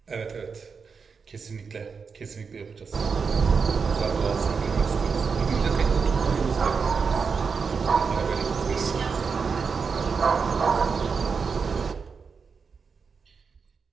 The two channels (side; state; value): left; quieter; 5.5 dB